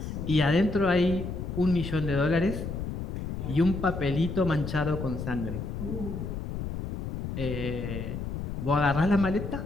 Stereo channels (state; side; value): noise; left; rumble, 5 dB below the sound